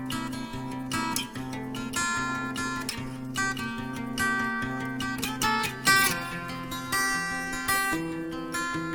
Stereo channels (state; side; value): identical; both; correlation 1.00